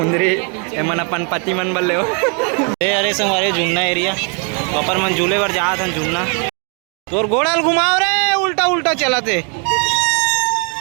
मन अपन पति मन बल्ले हो अरे संगवारी झुमना एरिया ऊपर मन झूले पर जा था झुमना तोर गोड़ाल घुमाओ रे उल्टा उल्टा चला थे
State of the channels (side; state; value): left; quieter; 38.1 dB